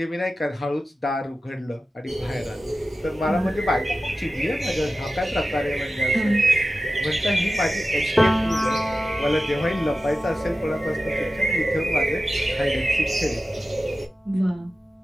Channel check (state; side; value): normal; both; correlation 0.94